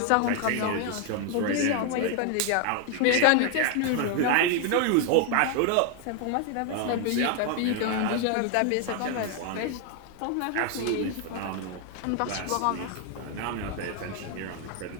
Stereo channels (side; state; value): both; different; correlation 0.01